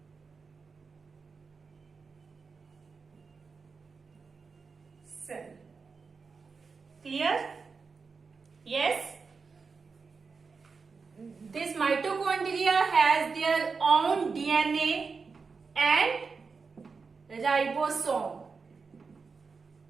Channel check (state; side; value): quieter; left; 4.9 dB